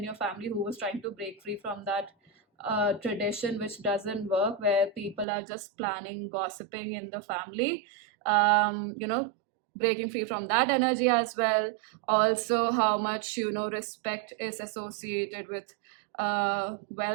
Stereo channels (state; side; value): drops out; left; at 5.2 s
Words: your family who was trying to break free from that tradition, which doesn't work, where people are just planning, gossiping in the family. Breaking free from that energy as well. Also, how much respect is associated with